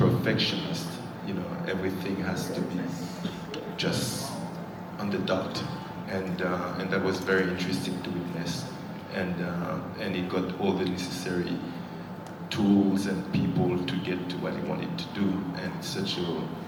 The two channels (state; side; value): identical; both; correlation 1.00